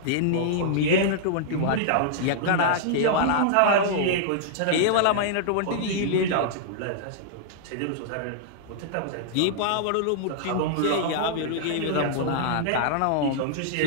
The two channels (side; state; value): both; different; correlation -0.01